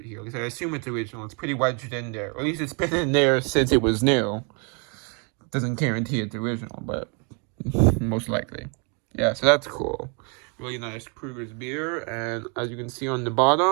here. At least I assume it's original. It's pretty wedged in there. Or at least it's been in there since it was new. Doesn't guarantee it's original, but most likely. Yeah, so that's cool. Really nice Kruger's beer. And as you can see on the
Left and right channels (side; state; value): left; quieter; 36.3 dB